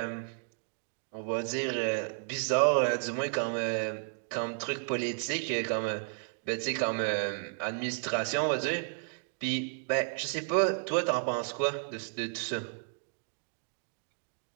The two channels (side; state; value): left; silent; digital silence